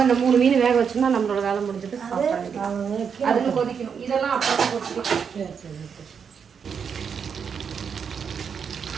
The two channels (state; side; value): quieter; left; 6.7 dB